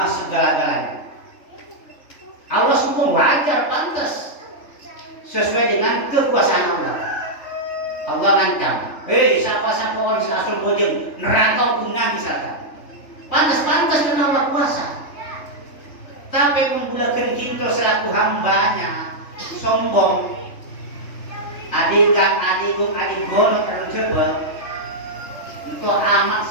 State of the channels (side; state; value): right; late; 3.4 ms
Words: segala-galanya. Allah sombong wajar, pantas, sesuai dengan kekuasaan Allah. Allah ngancam, siapa orang asal bojeng neraka guna misalkan. Pantas karena Allah kuasa. Tapi membulakan kita selaku hambanya sombong. Adik gono tercoba itu amat